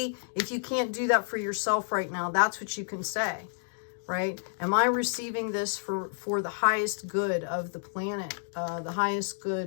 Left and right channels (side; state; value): right; silent; digital silence